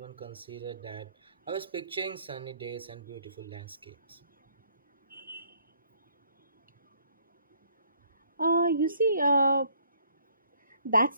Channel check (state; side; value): inverted; both; correlation -0.64